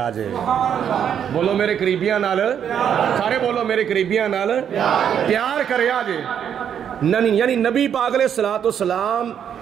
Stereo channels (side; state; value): left; quieter; 8.7 dB